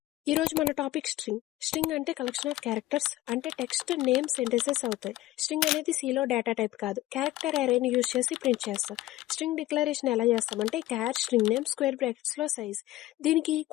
ఈ రోజు మన టాపిక్ స్ట్రింగ్. స్ట్రింగ్ అంటే కలెక్షన్ ఆఫ్ క్యారెక్టర్స్, అంటే టెక్స్ట్, నేమ్, సెంటెన్సెస్ అవుతాయి. స్ట్రింగ్ అనేది సిలో డేటా టైప్ కాదు, క్యారెక్టర్ అరేని యూజ్ చేసి ప్రింట్ చేస్తాం. స్ట్రింగ్ డిక్లరేషన్ ఎలా చేస్తామంటే క్యార్ స్ట్రింగ్ నేమ్ స్క్వేర్ బ్రాకెట్స్ లో సైజ్, దీనికి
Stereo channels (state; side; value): quieter; right; 16.0 dB